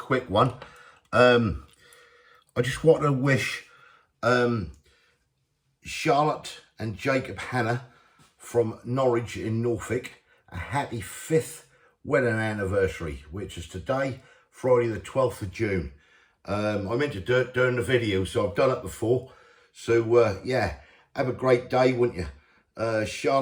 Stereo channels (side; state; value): both; identical; correlation 1.00